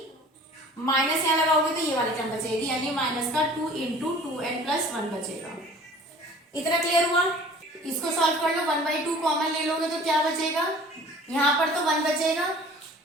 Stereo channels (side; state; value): both; normal; correlation 0.47